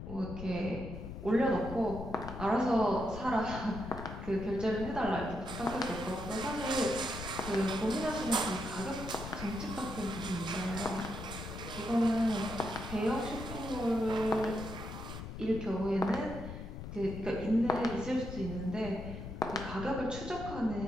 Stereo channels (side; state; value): left; noise; rumble, 9 dB below the sound